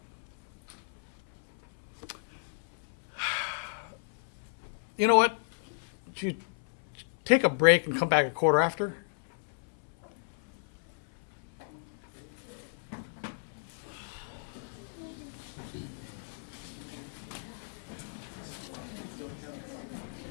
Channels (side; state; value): right; silent; 55 dB below the other